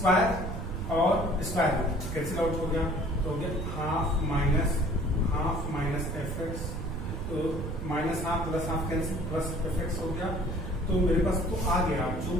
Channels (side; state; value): right; noise; rumble, 5 dB below the sound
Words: और स्क्वायर कैंसिल आउट हो गया, तो हो गया हाफ माइनस fx, तो minus half plus half cancel, plus fx हो गया। तो मेरे पास तो आ गया जो